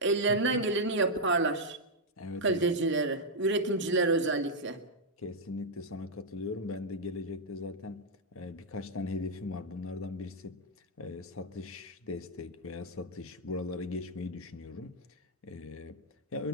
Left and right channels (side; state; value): both; normal; correlation -0.04